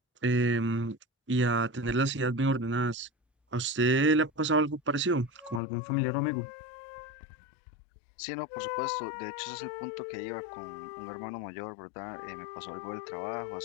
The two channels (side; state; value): right; drops out; at 5.6 s